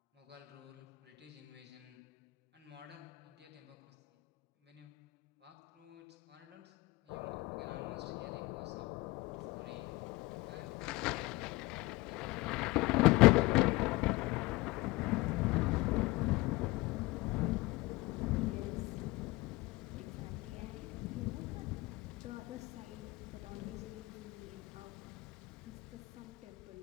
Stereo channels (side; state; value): right; quieter; 21.8 dB